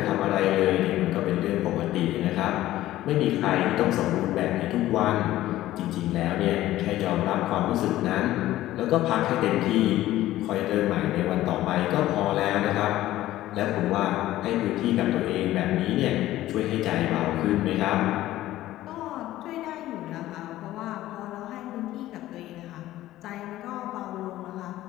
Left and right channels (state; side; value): quieter; right; 14.9 dB